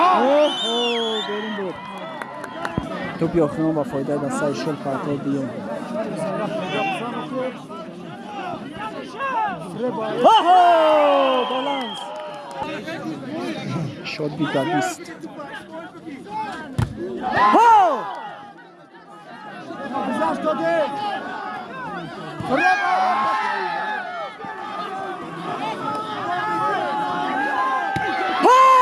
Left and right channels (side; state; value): both; identical; correlation 1.00